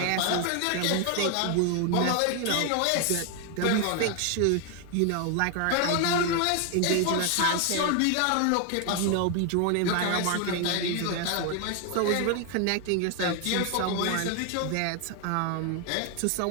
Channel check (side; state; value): both; different; correlation 0.01